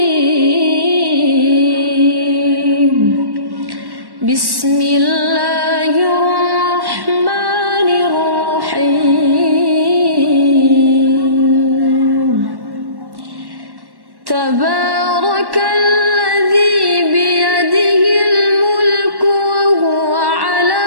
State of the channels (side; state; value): left; late; 1.1 ms